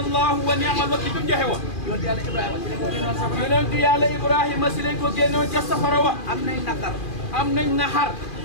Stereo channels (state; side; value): late; right; 2.4 ms